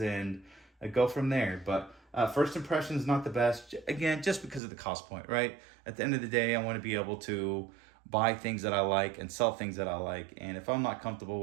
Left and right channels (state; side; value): drops out; left; at 4.6 s